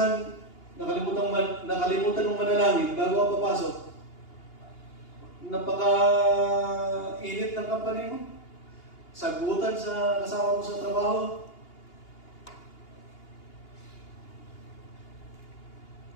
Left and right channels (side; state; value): right; late; 2.8 ms